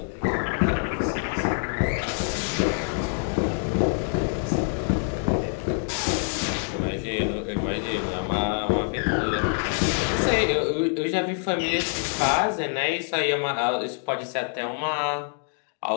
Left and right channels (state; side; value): silent; right; 56 dB below the other